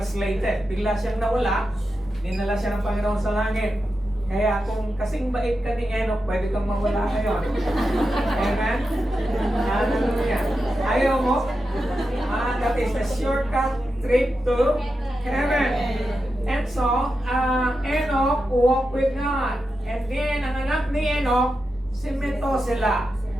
Bigla siyang nawala, dinala siya ng Panginoon sa langit. Kaya kung kasing bait ka ni Enoch, pwede kang mawala ngayon. Amen? Hallelujah. Ayaw mo? That is a shortcut trip to heaven. And so, Enoch walked with God. And then, ang anak ni Enoch, si Methuselah.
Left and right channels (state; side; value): normal; both; correlation 0.89